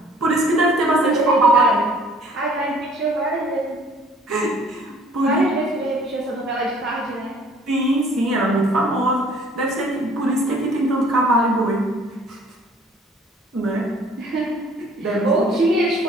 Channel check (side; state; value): both; normal; correlation 0.55